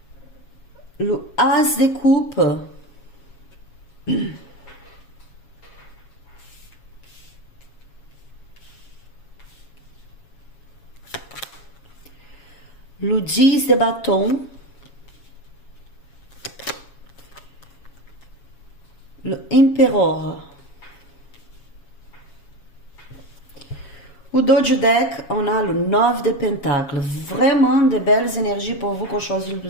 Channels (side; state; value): right; late; 7.2 ms